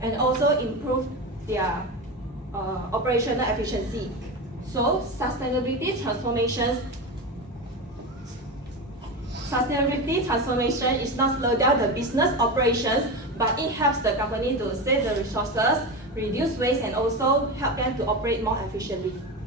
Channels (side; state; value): both; normal; correlation 0.21